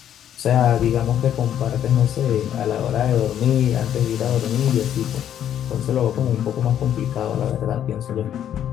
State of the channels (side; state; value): right; quieter; 10.2 dB